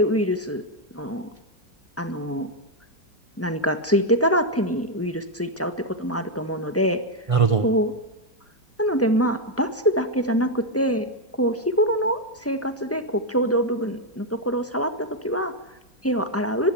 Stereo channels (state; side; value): normal; both; correlation 0.02